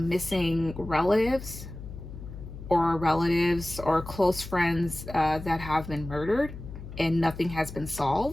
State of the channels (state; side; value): noise; left; hum, 12 dB below the sound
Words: relatives or close friends that have been murdered and nothing has been